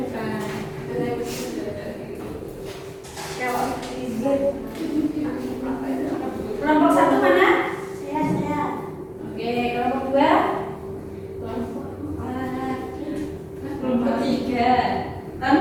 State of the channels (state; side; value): identical; both; correlation 1.00